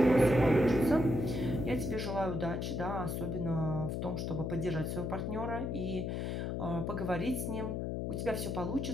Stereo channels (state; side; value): noise; left; hum, 2 dB below the sound